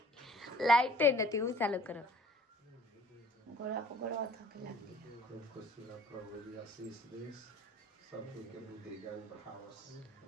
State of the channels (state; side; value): normal; both; correlation 0.53